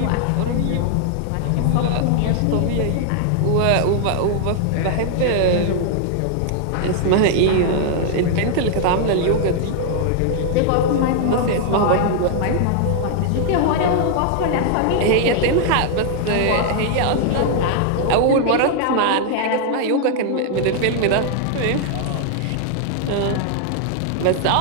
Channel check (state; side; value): different; both; correlation 0.00